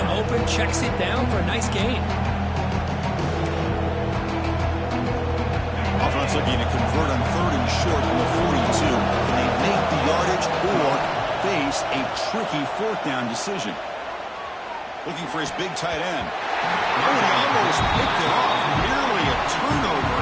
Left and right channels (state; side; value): identical; both; correlation 1.00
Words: open, checks it down for a nice gain. Offense looking to convert on 3rd and short from the 42. Can they make the yardage or face a tricky 4th down decision? Looking for his big tight end. Oh, he almost picked it off. Nearly a turnover